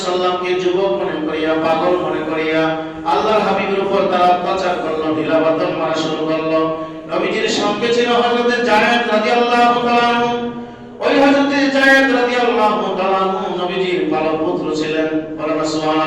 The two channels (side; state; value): both; identical; correlation 1.00